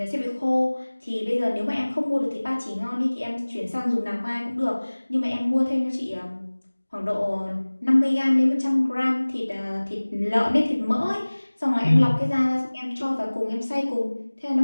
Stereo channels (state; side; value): inverted; both; correlation -1.00